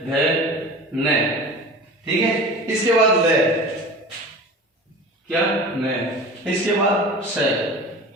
धे न। ठीक है, इसके बाद ले, क्या न, इसके बाद से।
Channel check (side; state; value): both; normal; correlation 0.37